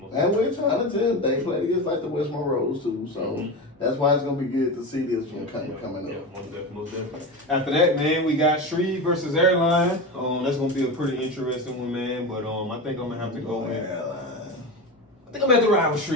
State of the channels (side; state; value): both; normal; correlation 0.22